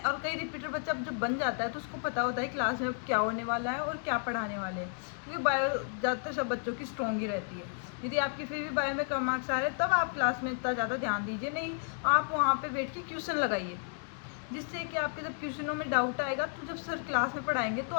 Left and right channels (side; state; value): right; silent; 56 dB below the other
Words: और कई रिपीटर बच्चा जब बन जाता है तो उसको पता होता है क्लास में क्या होने वाला है और क्या पढ़ाने वाले हैं, क्योंकि बायो ज़्यादातर सब बच्चों की स्ट्रॉन्ग ही रहती है। यदि आपकी फिर भी बायो में कम मार्क्स आ रहे हैं तब आप क्लास में इतना ज़्यादा ध्यान दीजिए नहीं, आप वहाँ पर बैठ के क्वेश्चन लगाइए, जिससे कि आपके जब क्वेश्चनों में डाउट आएगा तो जब सर क्लास में पढ़ाएंगे तो